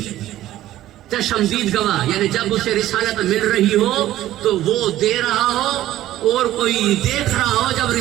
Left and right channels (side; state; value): left; quieter; 14.0 dB